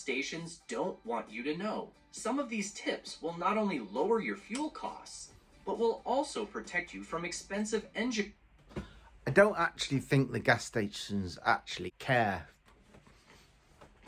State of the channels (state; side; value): identical; both; correlation 1.00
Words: don't want you to know. Some of these tips will not only lower your fuel costs, but will also protect you from expensive engine. I don't actually think the gas stations actually care.